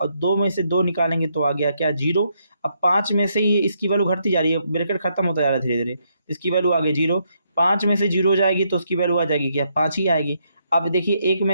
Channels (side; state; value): both; inverted; correlation -0.76